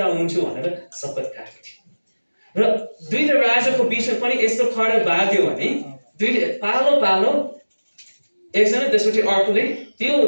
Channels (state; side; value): inverted; both; correlation -1.00